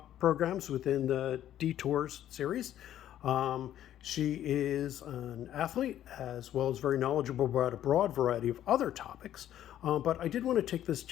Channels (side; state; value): right; quieter; 11.7 dB